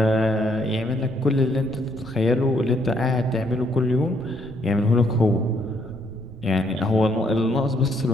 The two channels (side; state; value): right; noise; rumble, 20 dB below the sound